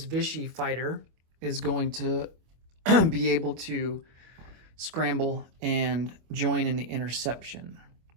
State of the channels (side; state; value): left; late; 25 ms